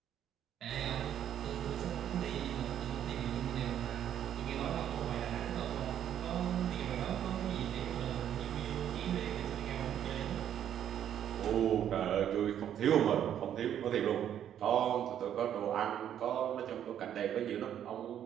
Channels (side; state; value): left; quieter; 10.1 dB